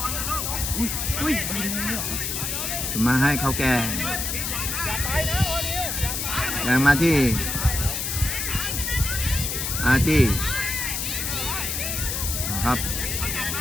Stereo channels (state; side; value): noise; left; hiss, 2 dB below the sound